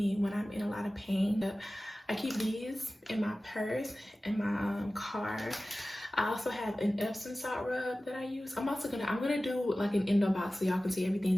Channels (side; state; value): both; normal; correlation 0.96